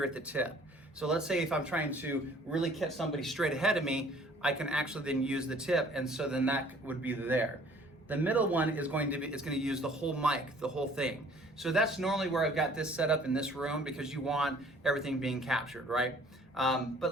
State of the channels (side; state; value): both; normal; correlation 0.55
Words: at the tip. So let's say if I'm trying to really catch somebody straight ahead of me, I can actually then use the tip, and so then that would be there. The middle one is going to use the whole mic, the whole thing. So that's normally where I've got this set up in this room, because you want everything being captured, right? But